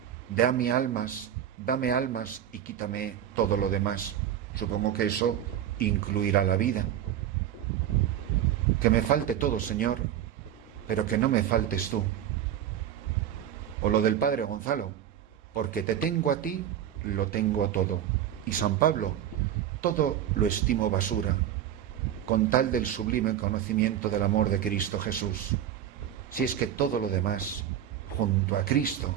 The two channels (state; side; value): quieter; left; 10.6 dB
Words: dame almas y quítame todo lo demás. Supongo que eso incluirá la vida. Que me falte todo, Señor, pero que no me faltes tú. O lo del Padre Gonzalo, porque te tengo a ti, lo tengo todo. Y San Pablo, todo lo estimo basura, con tal del sublime conocimiento del amor de Cristo Jesús. si es que todo lo demás, junto a